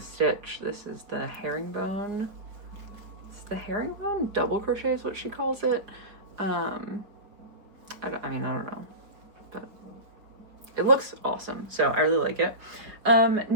This is the herringbone. It's the herringbone double crochet is what she calls it. I don't know, but it looks awesome, so I really like it.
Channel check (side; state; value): left; late; 4.9 ms